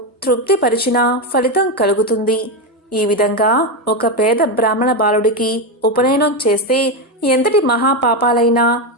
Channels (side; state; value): both; normal; correlation 0.10